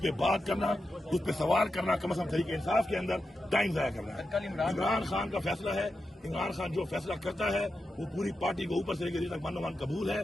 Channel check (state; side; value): normal; both; correlation 0.89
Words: बात करना, उस पर सवाल करना, कम से कम तरीके इंसाफ के अंदर टाइम जाया करना है। इमरान खान का फैसला है, इमरान खान जो फैसला करता है वो पूरी पार्टी को ऊपर से लेकर नीचे तक मन कबूल है।